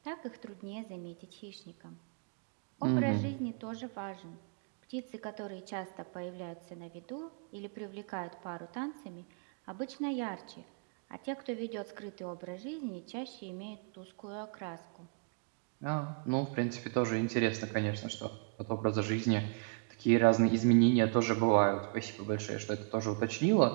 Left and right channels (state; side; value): quieter; left; 35.6 dB